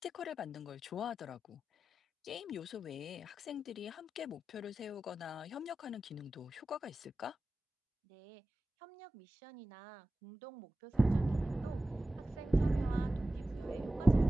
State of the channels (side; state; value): both; normal; correlation 0.94